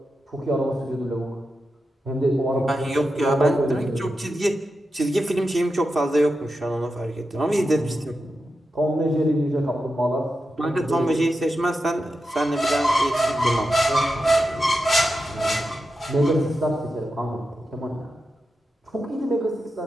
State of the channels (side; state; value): both; normal; correlation 0.89